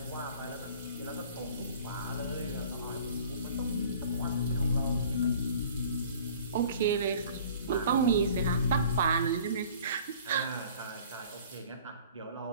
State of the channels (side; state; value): both; inverted; correlation -0.49